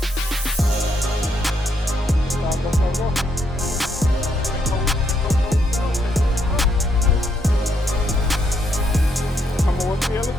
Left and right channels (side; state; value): both; normal; correlation 0.75